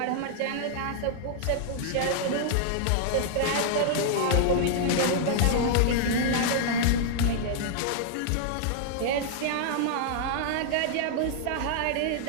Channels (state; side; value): different; both; correlation -0.01